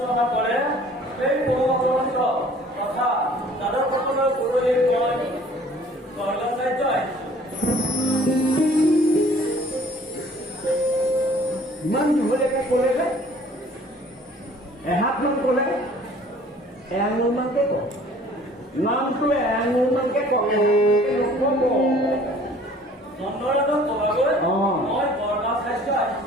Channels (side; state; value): both; normal; correlation 0.52